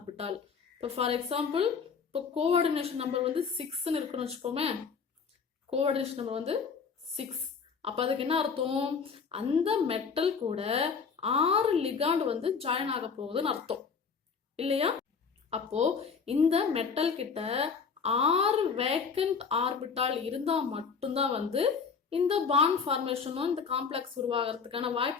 இப்போ ஃபார் எக்ஸாம்பிள், இப்போ கோஆர்டினேஷன் நம்பர் 6ன்னு இருக்குன்னு வச்சுப்போமே. Coordination number 6. அப்போ அதுக்கு என்ன அர்த்தம்? அந்த மெட்டல் கூட 6 லிகாண்ட் ஜாயின் ஆக போகுதுன்னு அர்த்தம் இல்லையா? அப்போ இந்த மெட்டல் கிட்ட 6 வேக்கண்ட் ஆர்பிட்டால் இருந்தா மட்டும்தான் இந்த பாண்ட் ஃபார்மேஷனும் இந்த காம்ப்ளெக்ஸ் உருவாகிறதுக்கான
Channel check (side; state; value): right; quieter; 5.7 dB